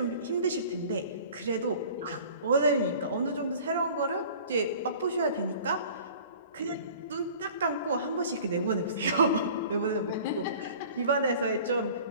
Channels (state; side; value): inverted; both; correlation -0.46